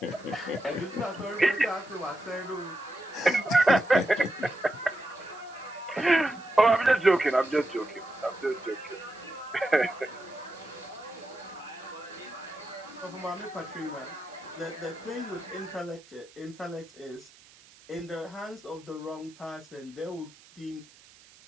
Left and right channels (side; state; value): right; noise; hiss, 24 dB below the sound